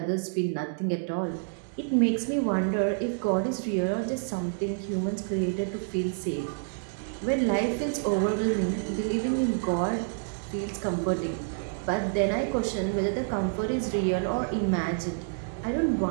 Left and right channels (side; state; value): left; silent; digital silence